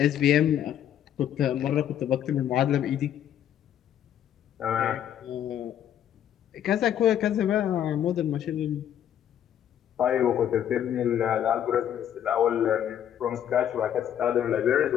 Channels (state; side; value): quieter; right; 10.2 dB